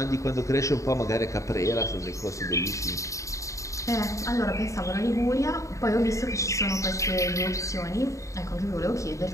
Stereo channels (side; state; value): right; late; 0.15 ms